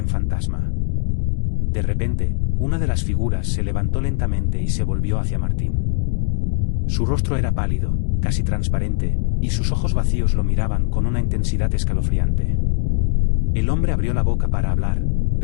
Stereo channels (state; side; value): silent; right; 66 dB below the other